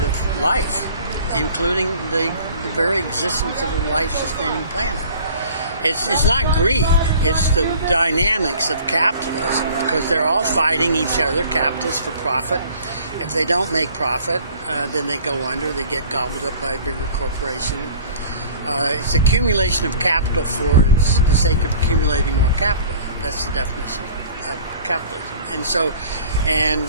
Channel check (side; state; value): both; inverted; correlation -0.47